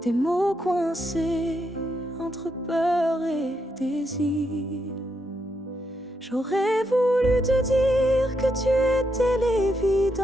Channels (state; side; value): normal; both; correlation 0.80